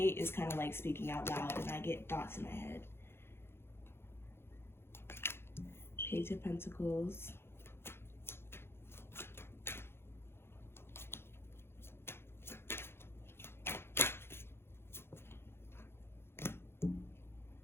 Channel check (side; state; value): right; late; 0.11 ms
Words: is kind of like speaking out loud, and I get thoughts in my head. Page of Pentacles.